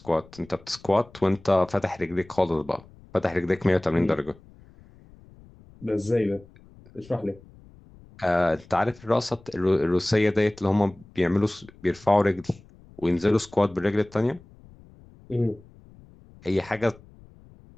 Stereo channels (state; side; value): noise; left; rumble, 24 dB below the sound